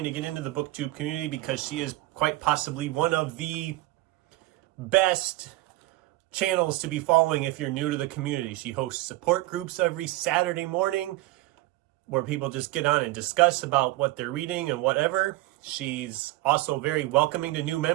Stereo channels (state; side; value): quieter; left; 18.1 dB